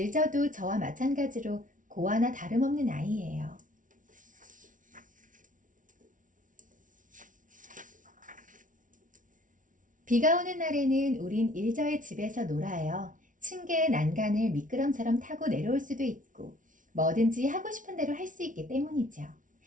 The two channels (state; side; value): late; left; 0.38 ms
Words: 저와 마찬가지로 고아나 다름없는 아이예요. 비가 오는 날에는 우린 일저의 집에서 놀아요. 층계의 난간을 미끄럼처럼 타고 내려올 수도 있고 뭐든지 하고 싶은 대로 할 수 있기 때문이죠.